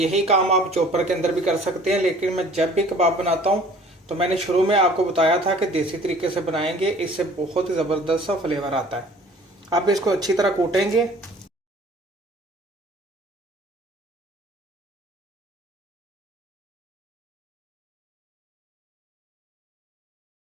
काम आप चॉपर के अंदर भी कर सकते हैं, लेकिन मैं जब भी कबाब बनाता हूँ तो मैंने शुरू में आपको बताया था कि देसी तरीके से बनाएंगे, इससे बहुत ही ज़बरदस्त सा फ्लेवर आता है। अब इसको अच्छी तरह कूटेंगे।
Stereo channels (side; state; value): both; normal; correlation 0.51